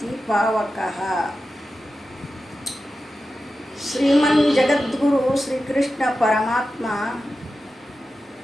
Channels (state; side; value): normal; both; correlation 0.92